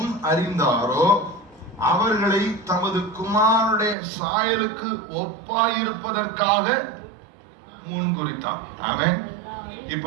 அறிந்தாரோ அவர்களை தமது குமாரனுடைய சாயலுக்கு ஒப்பாயிருப்பதற்காக முன்குறித்தார். ஆமென்.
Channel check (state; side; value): drops out; left; at 4.0 s